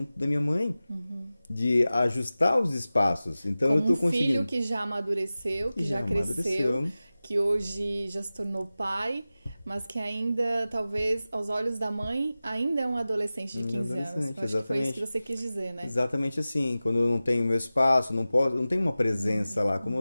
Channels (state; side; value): inverted; both; correlation -0.96